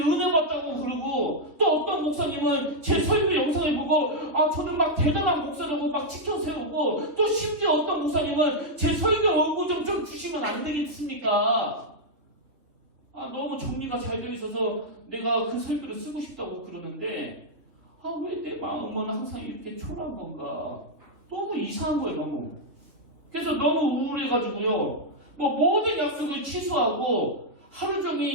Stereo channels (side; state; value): left; late; 3.6 ms